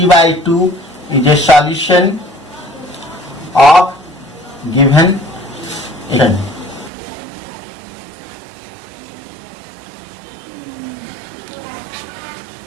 is a solution of given equation.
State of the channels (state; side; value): drops out; left; at 6.9 s